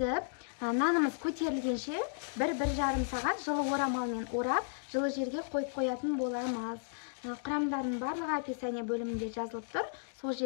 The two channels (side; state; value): right; silent; digital silence